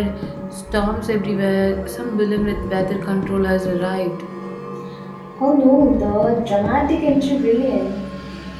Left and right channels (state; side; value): identical; both; correlation 1.00